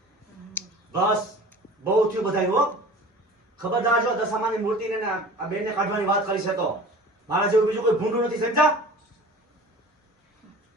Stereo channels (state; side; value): normal; both; correlation 0.41